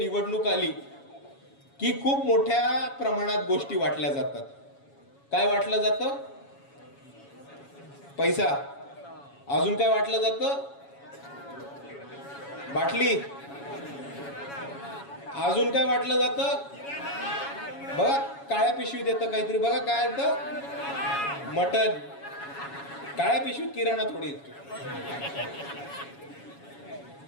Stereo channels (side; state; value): right; late; 7.2 ms